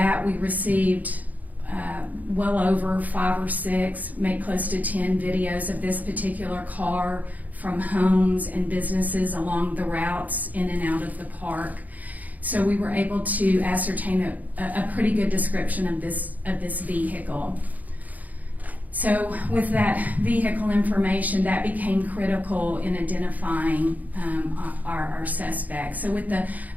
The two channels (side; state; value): left; late; 0.079 ms